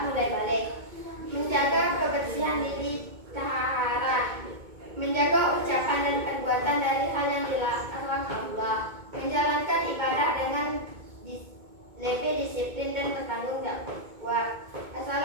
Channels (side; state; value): left; late; 2.2 ms